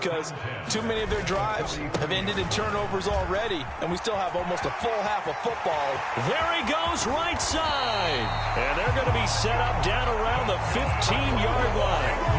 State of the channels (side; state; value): both; identical; correlation 1.00